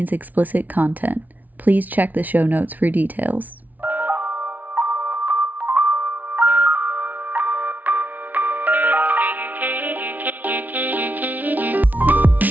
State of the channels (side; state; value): left; late; 0.078 ms